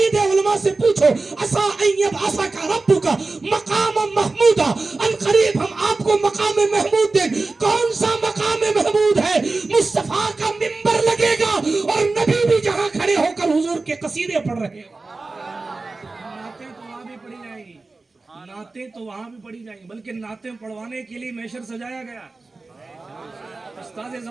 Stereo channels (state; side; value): quieter; left; 3.6 dB